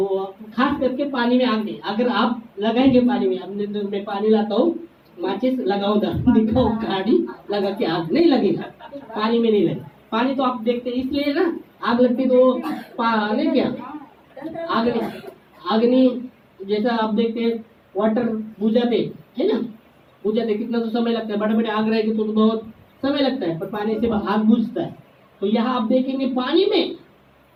खास करके पानी में आग नहीं, अगर आप लगाएंगे पानी में, अब मैं पानी लाता हूँ, माचिस लगाओ, दिखाओ गाड़ी लगा के, आग नहीं लगेगा, पानी में नहीं लगेगा। पानी तो आप देखते हैं इसलिए ना, आग लगती तो पानी क्या अग्नि जैसा आप देखते हैं, वाटर बुझाते है ना, बुझाते कितना तो समय लगता है, बड़े बड़े आग रहेगी तो बहुत समय लगता है, पर पानी से आग बुझता है। तो यहाँ आप देखेंगे पानी में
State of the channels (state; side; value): identical; both; correlation 1.00